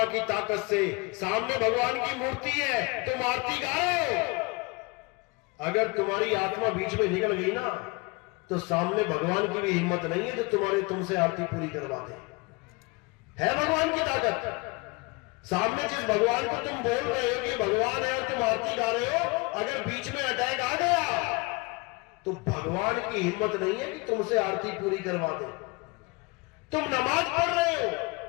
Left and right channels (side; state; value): right; quieter; 26.4 dB